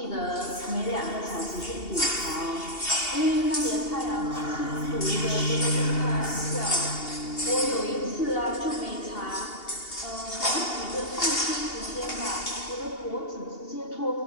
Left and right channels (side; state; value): right; late; 2.8 ms